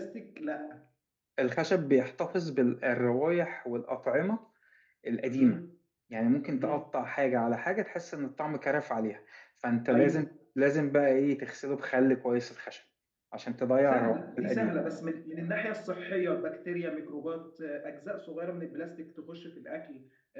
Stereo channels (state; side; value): identical; both; correlation 1.00